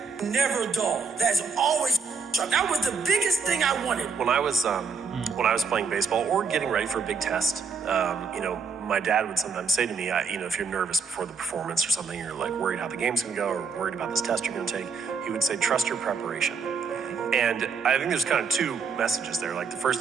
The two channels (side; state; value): left; quieter; 5.2 dB